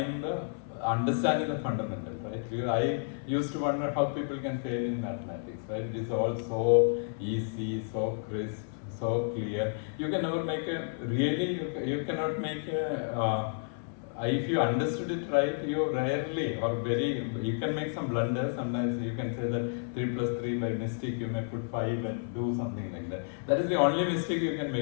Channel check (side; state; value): right; silent; 57 dB below the other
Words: understanding the fundamentals, right? I used to wonder how people can fail in mathematics, right? It is all so easy, so crisp, so clear. You can never make you cannot make if you understood it right, you rarely you can make some blunders. Sometimes you can say that 3 plus 3 by mistake you may put 5 and do something like that. That is the only mistake you can